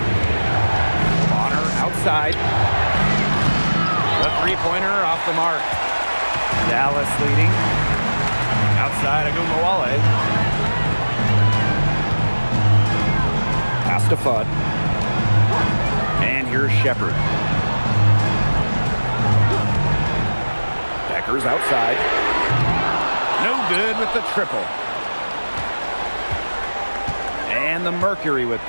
Bonner outside. The three-pointer off the mark. Dallas leading. Outside Wale. Pass to Fudd. And here's Shepard. Beckers outside. No good with the triple. And the Mercury with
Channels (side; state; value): both; inverted; correlation -1.00